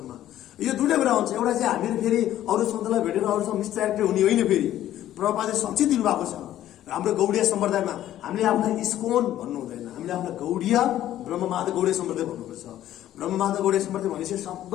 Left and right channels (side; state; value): right; quieter; 12.6 dB